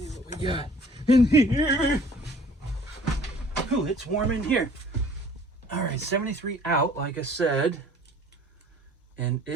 what we got in here. Ooh, it's warm in here. All right, 73 out, like I said. And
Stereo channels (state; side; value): normal; both; correlation 0.53